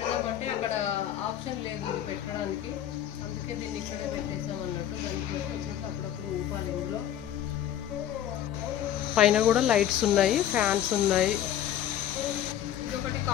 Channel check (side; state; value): right; quieter; 10.9 dB